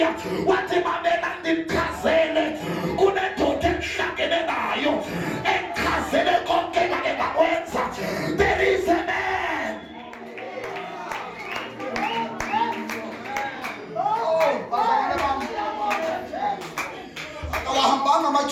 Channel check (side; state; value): both; identical; correlation 1.00